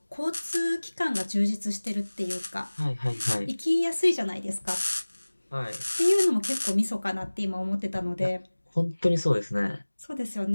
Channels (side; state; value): both; inverted; correlation -1.00